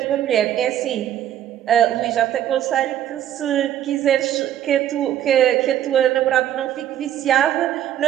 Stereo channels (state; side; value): quieter; left; 11.2 dB